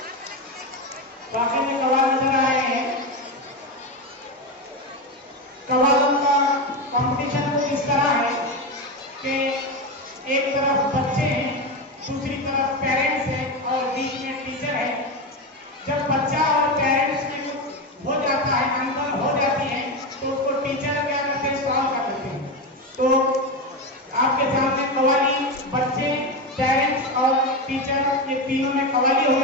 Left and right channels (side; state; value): both; normal; correlation 0.15